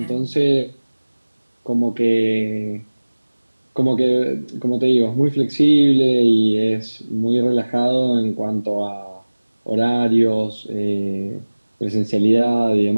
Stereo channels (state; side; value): inverted; both; correlation -1.00